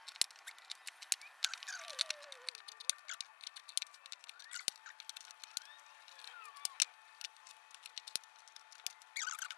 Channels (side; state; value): right; drops out; at 2.5 s